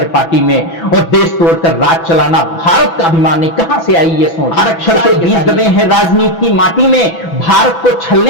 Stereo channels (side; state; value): right; late; 6.0 ms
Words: में, और देश तोड़कर राज चलाना भारत का अभिमान नहीं। कहां से आई ये सोच? आरक्षण के बीज दबे हैं राजनीति की माटी में, भारत को